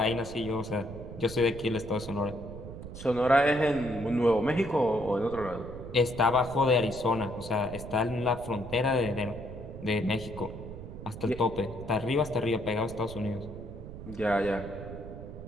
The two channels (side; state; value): right; noise; rumble, 11 dB below the sound